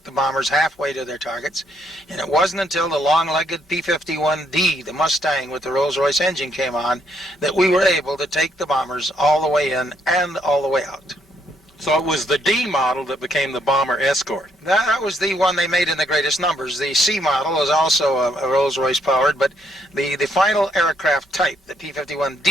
the bombers halfway to their targets, and it wasn't until the long-legged P-51D, the Mustang with the Rolls-Royce engine, came on that we were able to take the bombers all the way in and all the way out. So it was the D model that became the bomber escort. That was the one they made in the greatest numbers. The C model was also a Rolls-Royce powered, but the final aircraft type, the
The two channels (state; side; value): normal; both; correlation 0.72